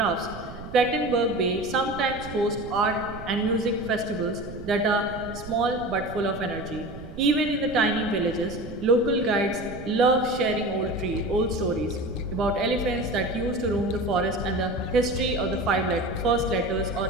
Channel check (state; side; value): noise; right; rumble, 13 dB below the sound